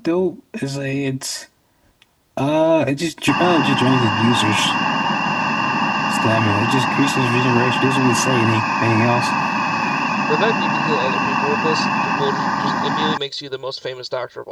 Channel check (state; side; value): identical; both; correlation 1.00